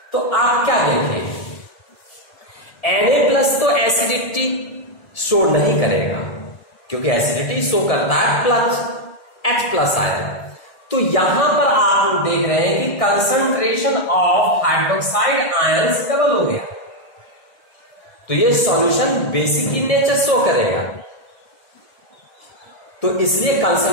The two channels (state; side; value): late; right; 1.7 ms